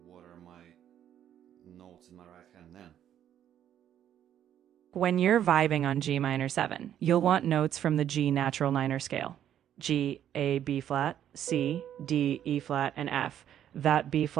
what are my notes in my right hand then? When you're vibing on G minor 7, you'll want notes from the G natural minor scale. G, A, B flat, C, D, E flat, and F. That B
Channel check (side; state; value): left; quieter; 10.4 dB